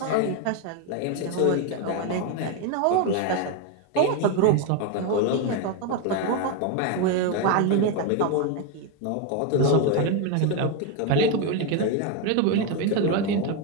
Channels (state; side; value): different; both; correlation 0.02